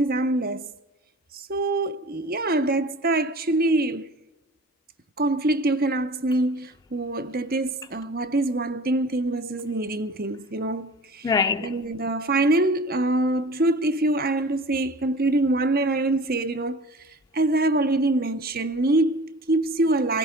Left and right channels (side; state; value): both; normal; correlation 0.41